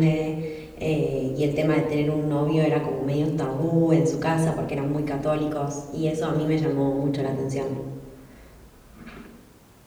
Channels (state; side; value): identical; both; correlation 1.00